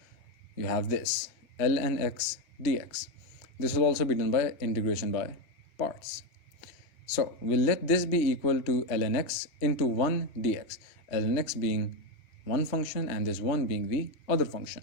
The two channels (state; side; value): late; right; 3.3 ms